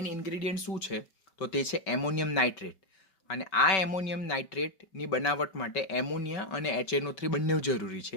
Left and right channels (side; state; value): right; late; 5.2 ms